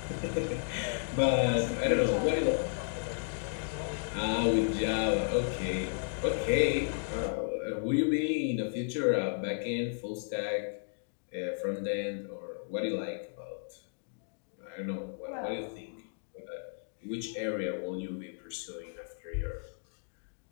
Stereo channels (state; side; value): silent; right; digital silence